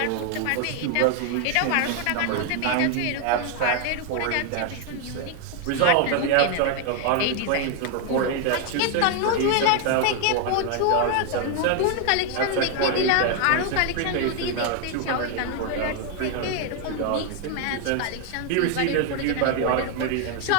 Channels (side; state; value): both; different; correlation 0.00